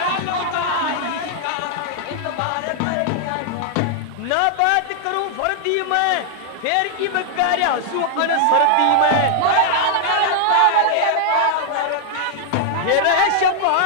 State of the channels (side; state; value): both; different; correlation 0.00